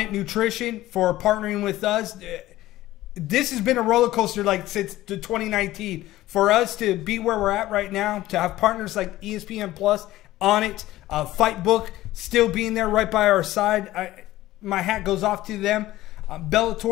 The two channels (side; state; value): right; quieter; 16.0 dB